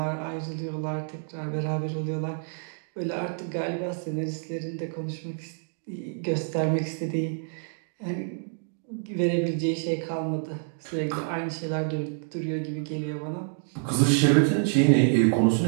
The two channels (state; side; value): silent; left; digital silence